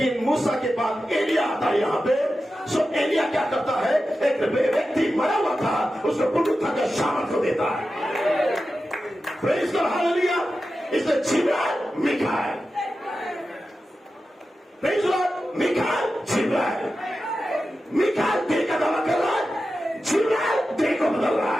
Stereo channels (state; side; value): normal; both; correlation 0.92